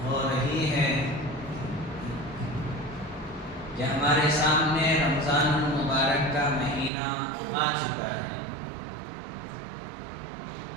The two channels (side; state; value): left; drops out; at 6.9 s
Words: ہو رہی ہے کہ ہمارے سامنے رمضان المبارک کا مہینہ آ چکا ہے۔